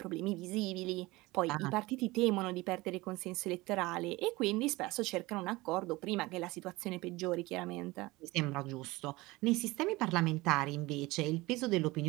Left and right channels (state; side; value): quieter; left; 21.2 dB